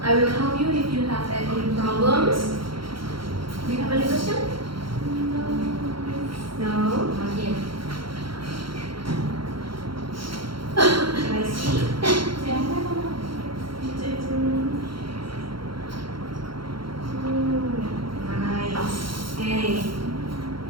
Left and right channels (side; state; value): left; late; 0.73 ms